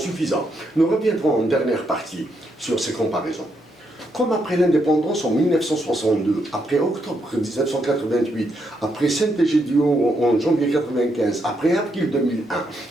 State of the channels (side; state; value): both; normal; correlation 0.79